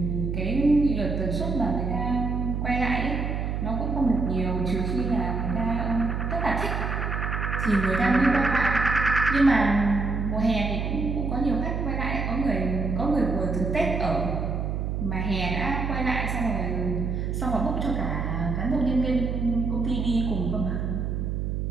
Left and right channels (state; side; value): noise; right; hum, 1 dB below the sound